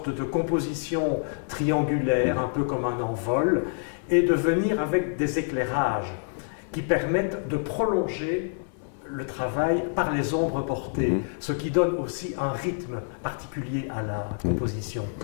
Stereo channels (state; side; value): silent; right; 55 dB below the other